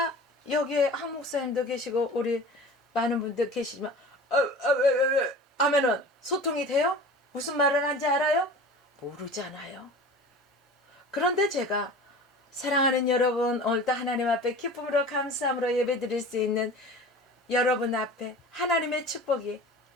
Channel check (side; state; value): both; normal; correlation 0.38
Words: 여기에 한 목사님도 계시고 우리 많은 분들 계시지만 왜 하면은 소통이 돼요? 무슨 말을 하는지 알아요? 모르잖아요. 그런데 제가 사랑하는 여러분, 오늘도 하나님 앞에 기쁨으로 감사함으로 예배드릴 수 있는 여러분 앞에 하나님의 축복이